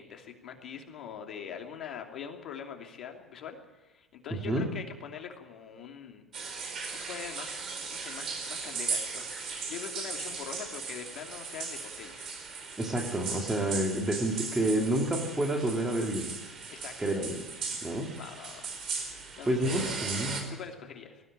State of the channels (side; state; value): both; normal; correlation 0.54